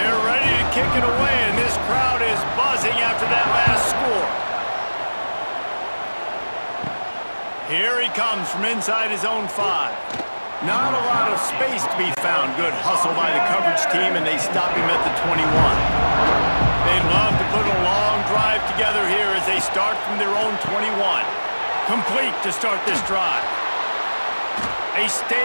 ready to kick it away, and this crowd is buzzing after that last score. Here he comes from inside his own 5. Not a lot of space to be found. Good hustle by the coverage team, and they stop him at the 21. They'd love to put a long drive together here as they start from their own 21. Complete to start this drive. They stay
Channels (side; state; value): both; inverted; correlation -1.00